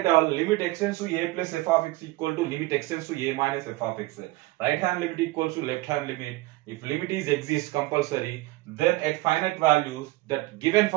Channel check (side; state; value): left; quieter; 19.7 dB